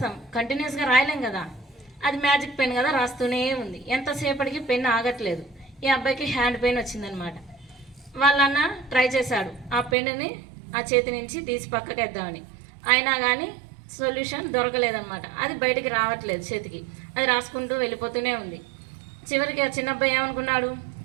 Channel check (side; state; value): left; drops out; at 10.0 s